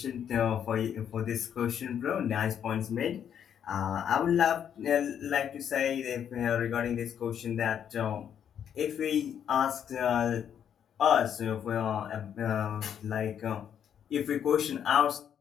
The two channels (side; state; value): right; quieter; 8.8 dB